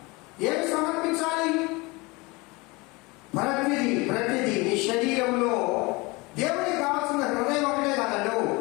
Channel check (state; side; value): quieter; right; 24.9 dB